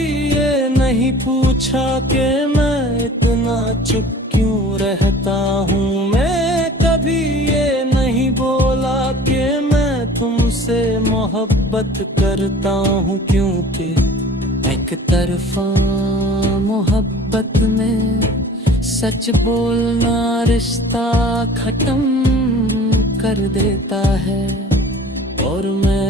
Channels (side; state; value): both; normal; correlation 0.45